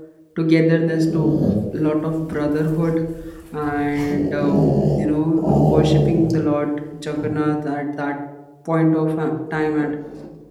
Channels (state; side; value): identical; both; correlation 1.00